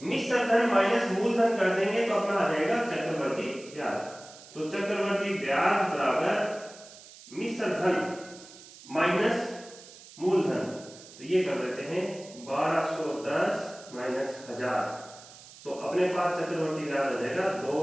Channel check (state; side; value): noise; right; hiss, 19 dB below the sound